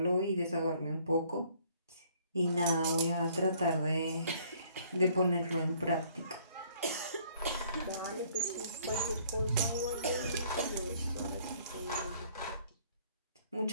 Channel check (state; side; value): inverted; both; correlation -0.61